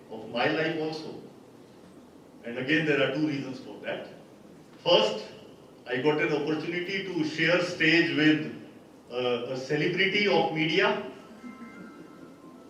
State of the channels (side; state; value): both; identical; correlation 1.00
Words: of my life also. And again, there are two reasons for that. First, I got an opportunity to share stage with a celebrity of media.